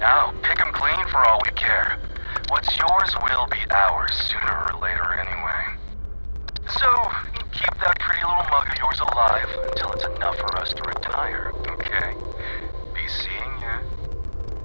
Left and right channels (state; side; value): inverted; both; correlation -1.00